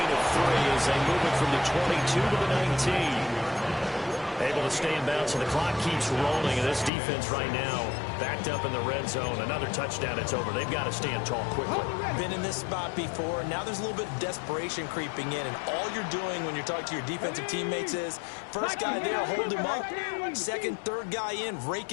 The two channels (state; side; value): drops out; right; at 6.9 s